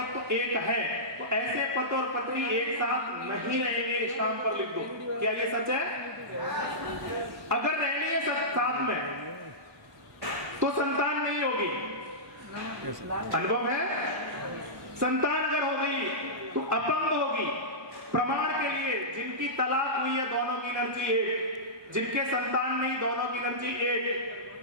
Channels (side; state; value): left; late; 1.1 ms